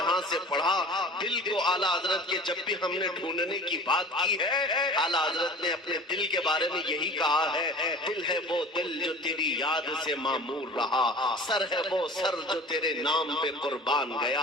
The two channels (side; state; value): both; normal; correlation 0.41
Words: سے پڑھا دل کو اعلیٰ حضرت کے جب بھی ہم نے ڈھونڈنے کی بات کی ہے، اعلیٰ حضرت نے اپنے دل کے بارے میں یہی کہا ہے، دل ہے وہ دل جو تیری یاد سے معمور رہا، سر ہے وہ سر جو تیرے نام پہ قربان